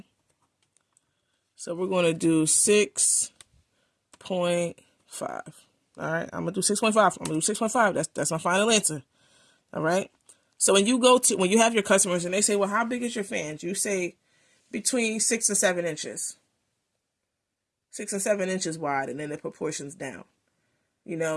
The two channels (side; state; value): both; identical; correlation 1.00